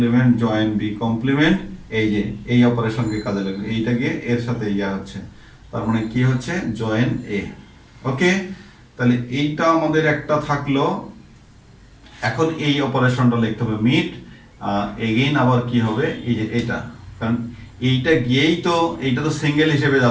join B complement, এই যে এই অপারেশনকে কাজে লাগবে, এইটা গিয়ে এর সাথে ইয়া হচ্ছে, তার মানে কি হচ্ছে জয়েন এ। ওকে, তাহলে এইটা আমাদের একটা থাকলো। এখন এই অপারেশনটা লিখতে হবে মিট এগেইন, আবার কি হবে এই যে এটা, কারণ এইটা গিয়েই তো, এইটা তো সিঙ্গেল হিসেবে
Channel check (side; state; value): both; identical; correlation 1.00